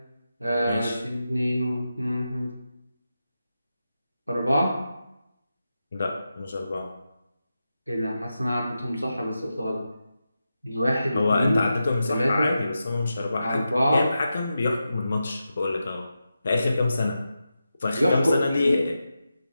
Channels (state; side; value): inverted; both; correlation -0.90